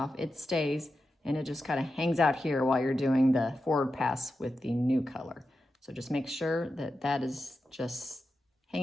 it stays, and it just kind of hangs out here while you're doing the forward pass with the new color. So just make sure that that is just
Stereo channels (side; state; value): both; normal; correlation 0.90